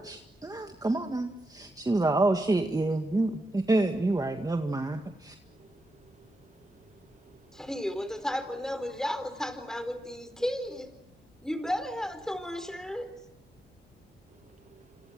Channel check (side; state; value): both; normal; correlation 0.87